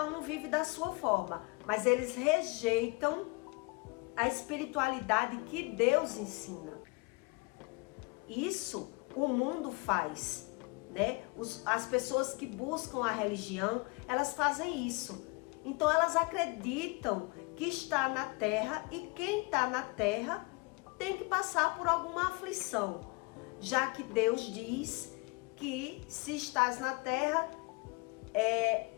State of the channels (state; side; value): quieter; right; 28.2 dB